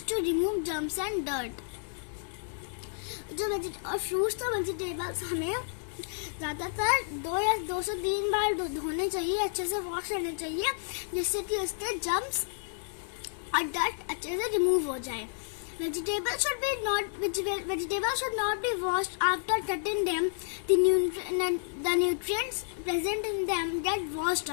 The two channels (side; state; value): right; silent; digital silence